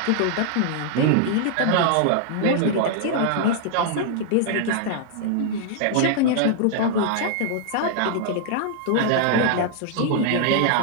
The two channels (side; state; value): both; different; correlation -0.01